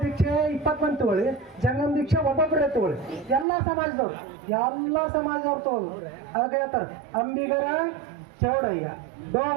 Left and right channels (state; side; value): drops out; left; at 3.5 s